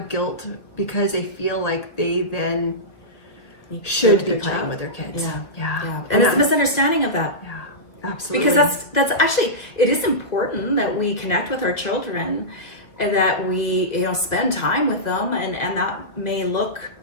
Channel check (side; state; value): right; late; 1.8 ms